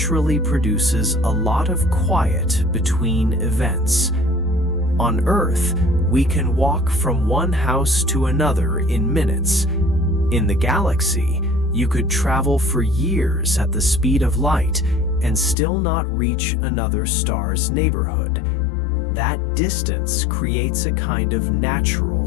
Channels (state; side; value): drops out; right; at 15.6 s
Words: produces a lot of quiet between events. On Earth, we can walk from one house to another in minutes. In the galaxy, you could travel for years at the speed of light and still not reach another star's neighborhood. That distance creates a kind of natural